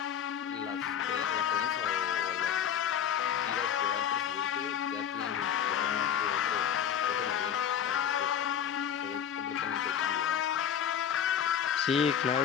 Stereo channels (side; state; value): right; quieter; 8.8 dB